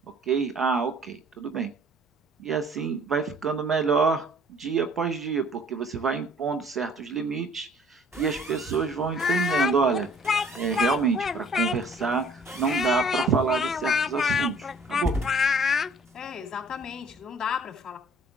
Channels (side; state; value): both; normal; correlation 0.55